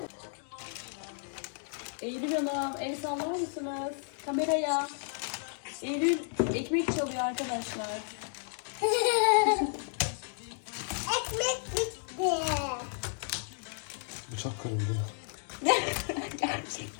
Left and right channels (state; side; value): silent; right; 56 dB below the other